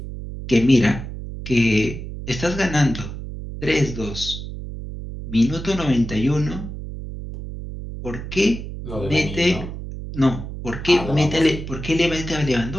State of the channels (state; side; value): noise; right; hum, 9 dB below the sound